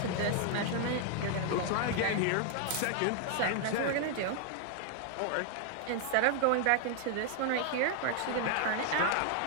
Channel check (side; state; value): both; different; correlation 0.00